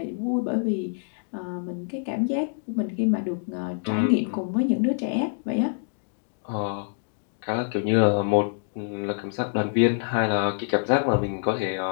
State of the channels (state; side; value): silent; right; digital silence